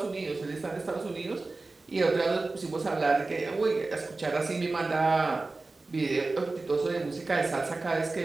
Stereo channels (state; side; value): quieter; left; 3.5 dB